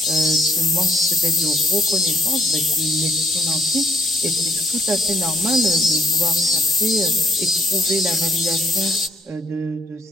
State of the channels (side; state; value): both; normal; correlation 0.69